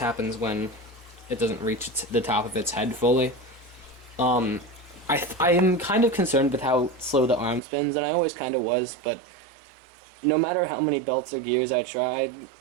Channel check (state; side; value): drops out; left; at 7.6 s